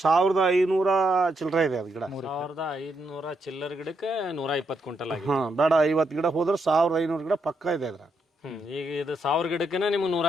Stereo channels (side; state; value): both; normal; correlation 0.79